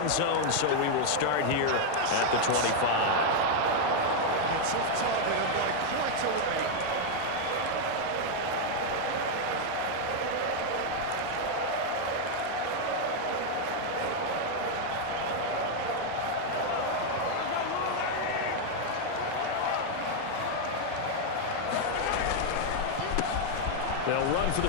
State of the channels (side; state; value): both; different; correlation 0.00